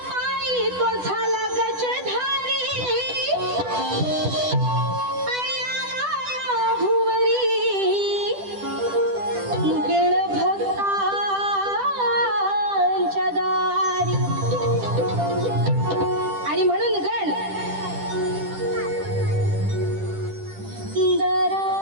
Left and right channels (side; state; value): left; late; 10 ms